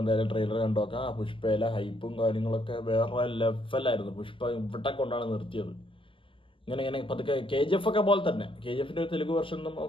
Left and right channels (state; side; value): late; right; 0.25 ms